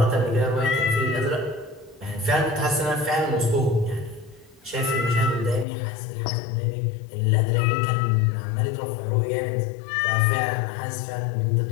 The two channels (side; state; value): right; drops out; at 5.7 s